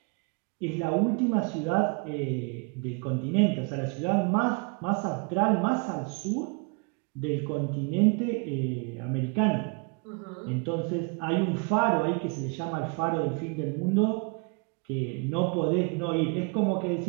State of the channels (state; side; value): quieter; left; 32.9 dB